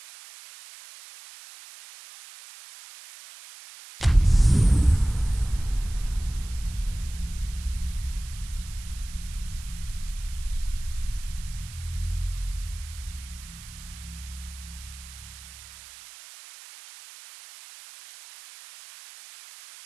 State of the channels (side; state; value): right; noise; hiss, 16 dB below the sound